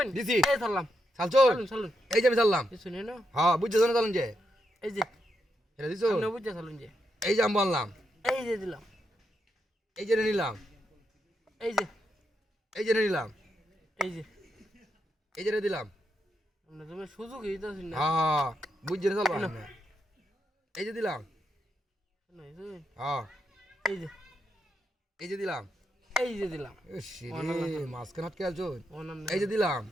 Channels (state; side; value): normal; both; correlation 0.82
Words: দিছি এই ধরলাম চালছুন চলুন এই যে আমি চাললাম দিছুন না হ্যাঁ বুঝছো না চালুন যে এই যে এটা দিছো আপনি বুঝতে চলুন যে এই যে আমি বললাম এই যে দিলাম এই যে নিলাম এই যে এই যে নিলাম এই যে এই যে দিলাম আপনি তুমি সুযোগ দিতেছেন না হ্যাঁ বুঝছো না চালবা এই যে দিলাম হ্যাঁ এই যে এই যে দিলাম এই যে দিলাম মাঝখানে আটকে আছো অনাম এই যে দিলাম